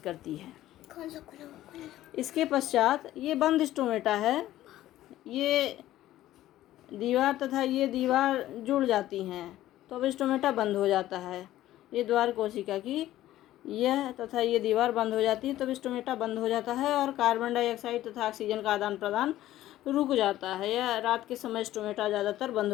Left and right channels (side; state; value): right; quieter; 14.3 dB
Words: है। इसके पश्चात ये बंद स्टोमेटा है। ये दीवार तथा ये दीवार जुड़ जाती हैं तो अब स्टोमेटा बंद हो जाता है। ये द्वार कोशिका की यह तथा ये दीवार बंद हो जाती है तब स्टोमेटा बंद हो जाता है और कार्बन डाइऑक्साइड तथा ऑक्सीजन का आदान प्रदान रुक जाता है। यह रात के समय स्टोमेटा ज़्यादातर बंद